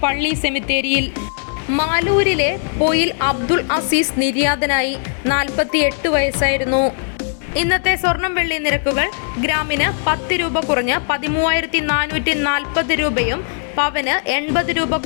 പള്ളി സെമിത്തേരിയിൽ. മാലൂരിലെ പൊയിൽ അബ്ദുൾ അസീസ് നിര്യാതനായി. 48 വയസ്സായിരുന്നു. ഇന്നത്തെ സ്വർണം വെള്ളി നിരക്കുകൾ. ഗ്രാമിന് 10 രൂപ കുറഞ്ഞ് 13,440 രൂപയും പവന് 80 രൂപ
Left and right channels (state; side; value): silent; right; digital silence